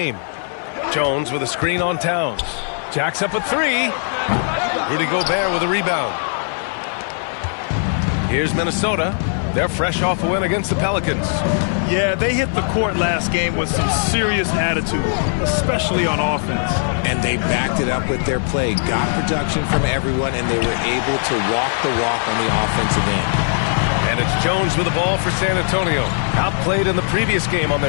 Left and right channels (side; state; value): right; silent; 56 dB below the other